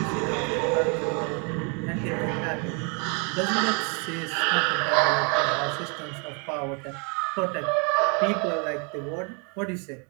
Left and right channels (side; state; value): left; quieter; 35.4 dB